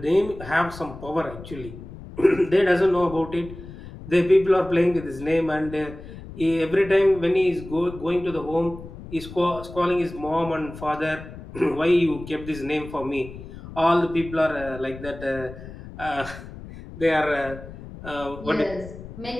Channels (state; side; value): noise; left; rumble, 14 dB below the sound